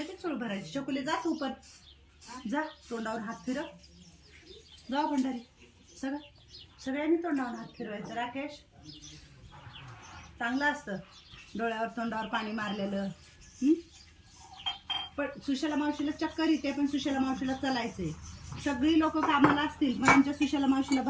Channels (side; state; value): both; identical; correlation 1.00